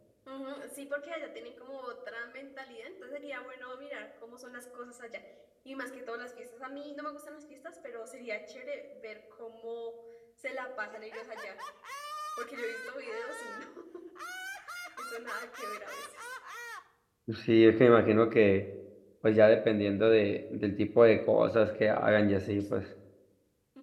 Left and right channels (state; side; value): identical; both; correlation 1.00